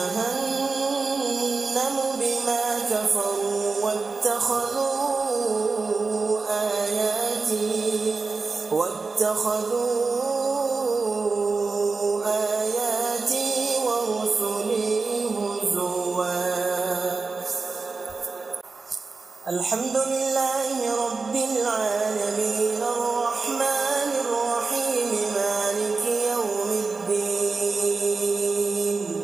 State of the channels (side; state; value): left; quieter; 4.2 dB